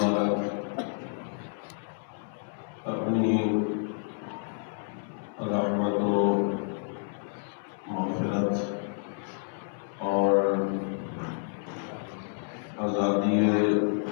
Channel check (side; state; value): right; silent; 58 dB below the other